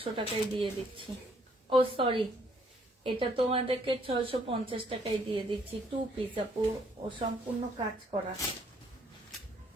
টাকায় দিয়ে দিচ্ছি। ও সরি, এটা তোমাদেরকে 650 টাকায় দিয়ে দিচ্ছি। 2 পিস আপু, ও সম্পূর্ণ কাজ করা।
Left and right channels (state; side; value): normal; both; correlation 0.66